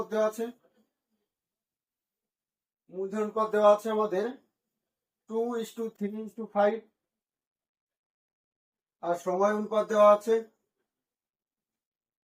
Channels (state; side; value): identical; both; correlation 1.00